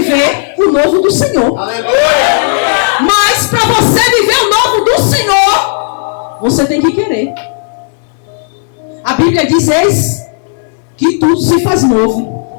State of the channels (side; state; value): right; silent; digital silence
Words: o novo do Senhor. Aleluia! Mas para você viver o novo do Senhor, você tem que querer. A Bíblia diz, eis que tudo se faz